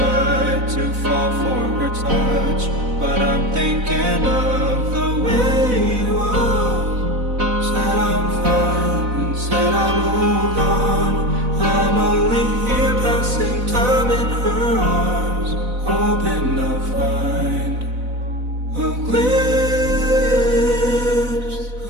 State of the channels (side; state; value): left; late; 4.0 ms